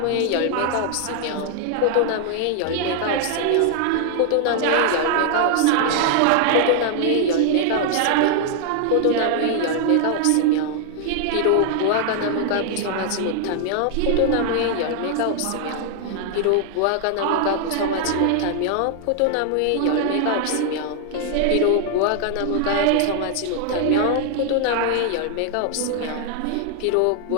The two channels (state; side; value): different; both; correlation 0.00